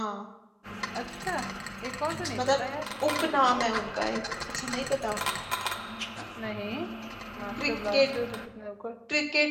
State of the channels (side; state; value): both; identical; correlation 1.00